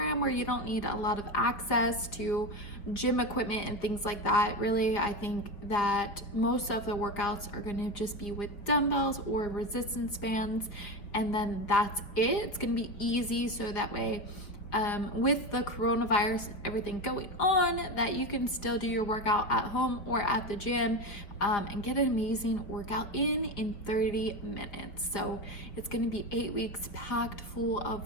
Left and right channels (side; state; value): right; late; 5.0 ms